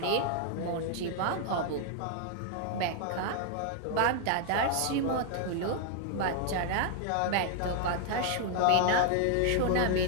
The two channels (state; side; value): different; both; correlation 0.00